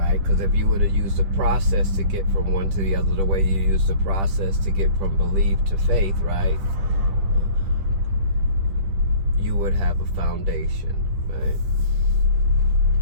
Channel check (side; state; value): left; late; 10 ms